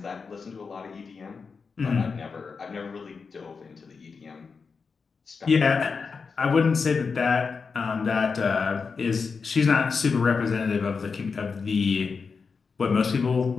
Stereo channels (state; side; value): quieter; right; 5.1 dB